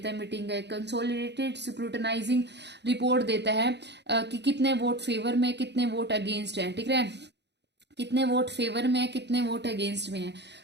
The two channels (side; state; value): left; late; 0.50 ms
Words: है मीटिंग का, कंसोलिडेटेड स्क्रूटनाइजिंग रिपोर्ट देता है कि कितने वोट फेवर में, कितने वोट अगेंस्ट है। ठीक है, कितने वोट फेवर में है, कितने वोट अगेंस्ट में है।